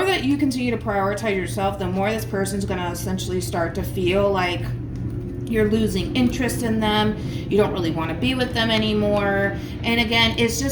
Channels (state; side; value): identical; both; correlation 1.00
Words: that you continue to prioritize yourself, the more this person's going to essentially start to feel like you're losing interest in them. You don't really want to be with them anymore. And again, it's